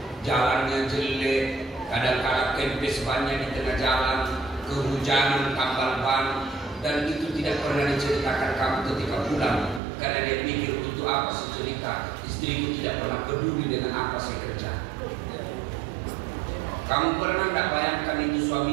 jalannya jelek, kadang-kadang kempes bannya di tengah jalan, kehujanan, tambal ban, dan itu tidak pernah diceritakan kamu ketika pulang, karena dia pikir untuk apa sih cerita, istriku tidak pernah peduli dengan apa saya kerja. Kamu pernah tidak bayangkan itu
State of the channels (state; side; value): drops out; left; at 9.8 s